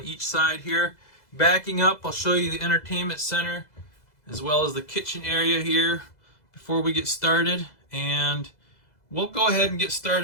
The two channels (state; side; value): late; right; 2.0 ms